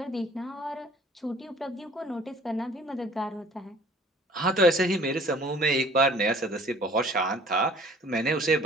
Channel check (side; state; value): both; normal; correlation 0.51